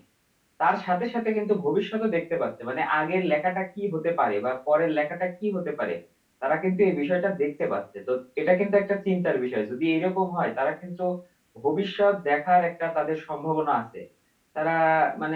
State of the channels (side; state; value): both; identical; correlation 1.00